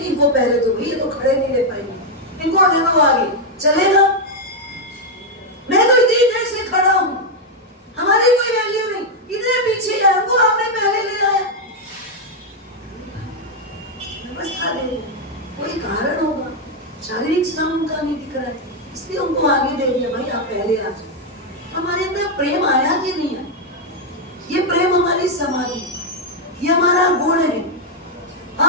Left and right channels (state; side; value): normal; both; correlation 0.01